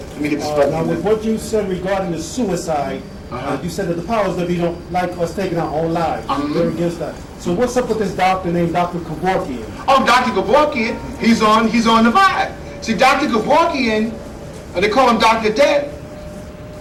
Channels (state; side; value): identical; both; correlation 1.00